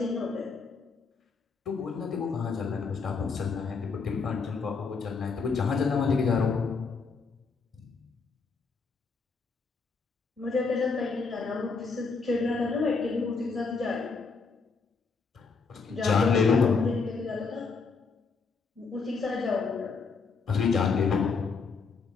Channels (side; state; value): right; quieter; 4.8 dB